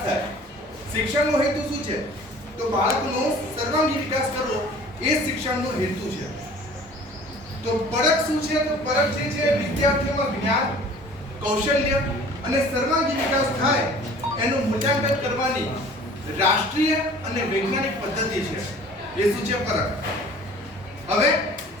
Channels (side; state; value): both; normal; correlation 0.48